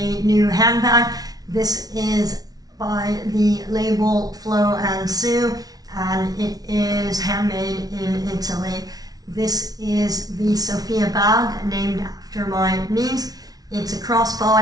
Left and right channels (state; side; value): late; left; 0.18 ms